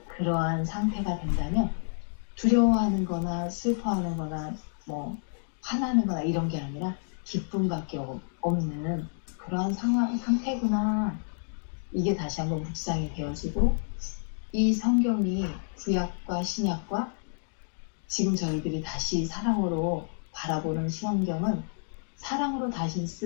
그러한 상태가 된다면 두려워하는 거나 슬퍼하는 거나 뭐 화나는 거나 이런 게 아니라 기쁨밖에 없는 그러한 상태구나. 이게 다시 한번 묵상이 되어지고 이 성경이 구약과 신약과 지금 저희들이 다시 사랑으로 바라보는 성경은 사랑으로 다시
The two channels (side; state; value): right; silent; digital silence